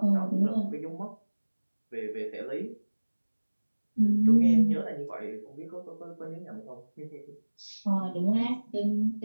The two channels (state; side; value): inverted; both; correlation -1.00